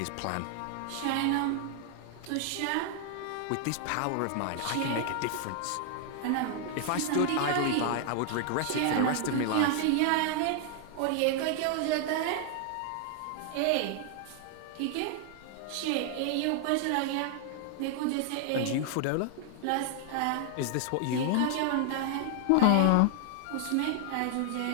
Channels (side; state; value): both; different; correlation 0.00